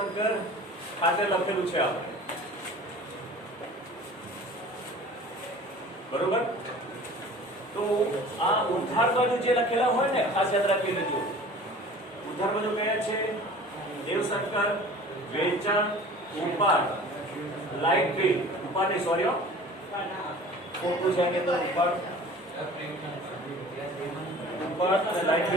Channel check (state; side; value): normal; both; correlation 0.43